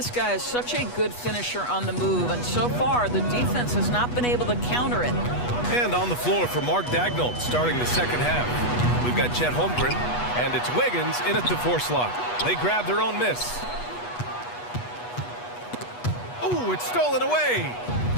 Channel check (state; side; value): late; right; 8.2 ms